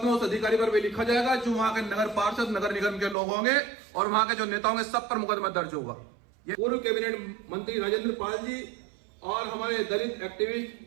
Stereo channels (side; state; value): left; drops out; at 3.2 s